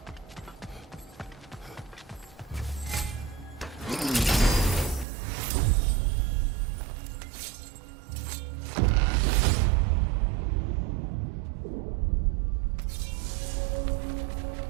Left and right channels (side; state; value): left; drops out; at 5.1 s